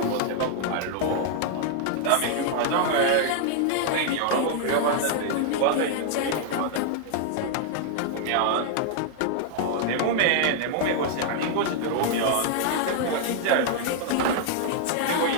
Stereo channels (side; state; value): both; different; correlation 0.00